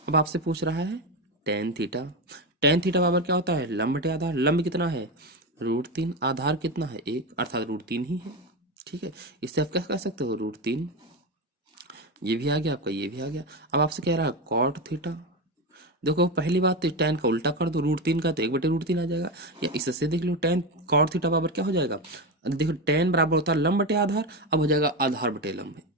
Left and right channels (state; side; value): normal; both; correlation 0.16